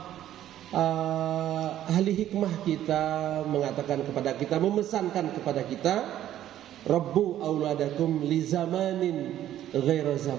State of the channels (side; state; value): left; quieter; 12.1 dB